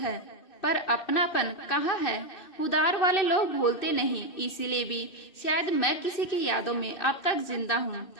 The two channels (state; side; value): late; right; 2.6 ms